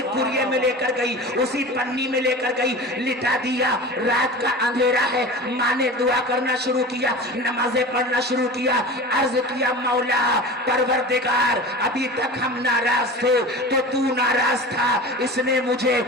کوریے میں لے کر گئی، اسی پنی میں لے کر گئی، لٹا دیا۔ رات کا اندھیرا ہے، ماں نے دعا کرنا شروع کیا، نمازیں پڑھنا شروع کیا، عرض کیا مولا پروردگار ابھی تک ہم ناراض تھے تو تو ناراض تھا، اس نے مجھے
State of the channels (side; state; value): both; normal; correlation 0.33